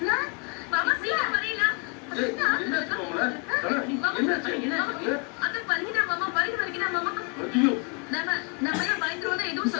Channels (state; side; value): quieter; right; 35.0 dB